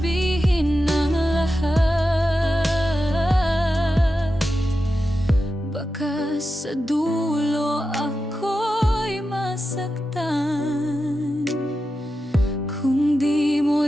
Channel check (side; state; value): both; normal; correlation 0.90